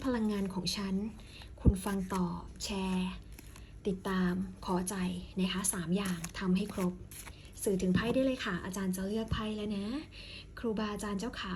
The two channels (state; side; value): identical; both; correlation 1.00